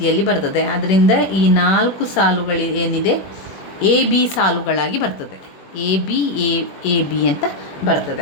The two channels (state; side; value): late; right; 21 ms